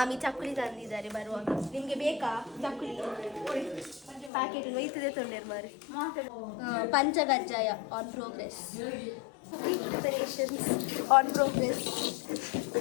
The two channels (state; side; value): drops out; right; at 4.3 s